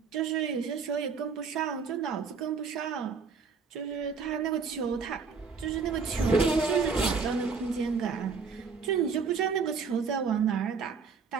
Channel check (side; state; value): left; quieter; 5.4 dB